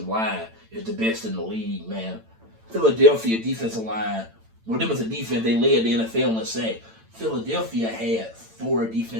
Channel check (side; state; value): left; late; 8.9 ms